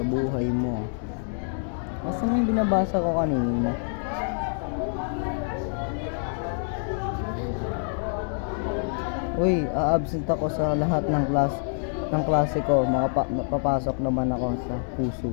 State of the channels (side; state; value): right; silent; 61 dB below the other